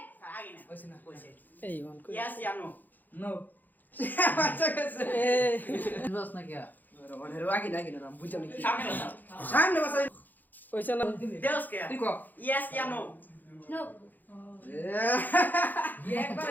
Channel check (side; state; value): right; late; 0.085 ms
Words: এই গন Yes ya no. नो अच्छा कैसे বস না কি आगे ना आगे ना बुझो नहीं Sabi na. सामने बस ওইসা না Deus kaya. देखो Yes ya no. No. ये एक